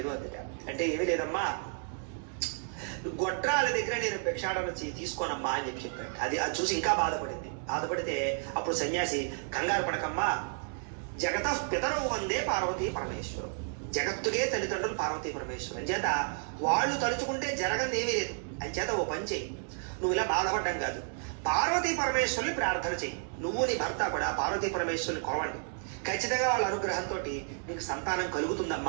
అందుట. అంటే ఏమీ లేదమ్మా, గొడ్రాల దగ్గర నేను భిక్షాటన తీసుకోనమ్మా అని చెప్పాడు. అది చూసి ఇంకా బాధపడితే అప్పుడు సన్యాసి కంగారు పడకమ్మా, జగత పితరవు వందే పార్వతీ పరమేశ్వరం, జగత్తుకే తల్లిదండ్రులు పార్వతీ పరమేశ్వరం చేత వాళ్ళు తలుచుకుంటే జరగని ఏమీ లేదు. అని చేత ఓ పని చెయ్యి, నువ్వు ఇలా బాధపడ్డం కాదు, పార్వతీ పరమేశ్వరుని ప్రార్థన చెయ్యి, నువ్వు నీ భర్త కూడా పార్వతీ పరమేశ్వరుని కొలవండి, ఖచ్చితంగా వాళ్ళ అనుగ్రహంతో నీకు సంతానం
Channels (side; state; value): left; silent; 57 dB below the other